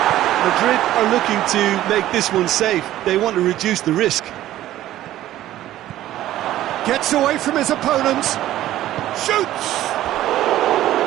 Madrid are looking to make this one safe. They want to reduce the risk. Gets away from his opponent. Shoots!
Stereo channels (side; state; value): left; quieter; 13.9 dB